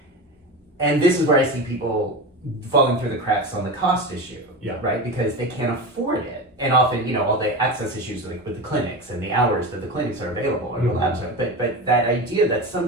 And this is where I see people falling through the cracks on the cost issue, right? Because they can't afford it. And often, all the access issues like with the clinics and the hours that the clinics are available or the labs are. But that idea that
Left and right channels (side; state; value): both; normal; correlation 0.25